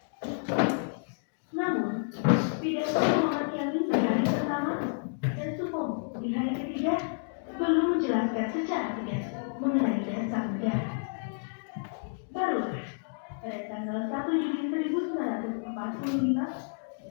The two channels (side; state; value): right; silent; digital silence